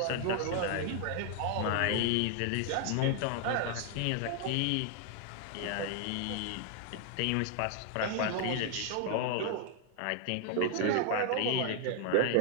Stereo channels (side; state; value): both; different; correlation 0.00